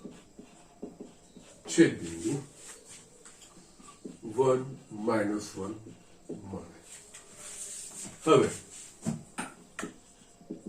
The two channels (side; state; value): both; identical; correlation 1.00